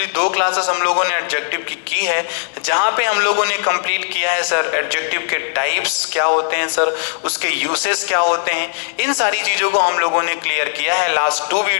दो क्लासेस हम लोगों ने एडजेक्टिव की है, जहां पे हम लोगों ने कंप्लीट किया है सर एडजेक्टिव के टाइप्स क्या होते हैं सर, उसके यूसेस क्या होते हैं, इन सारी चीजों को हम लोगों ने क्लियर किया है लास्ट 2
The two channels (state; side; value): silent; right; digital silence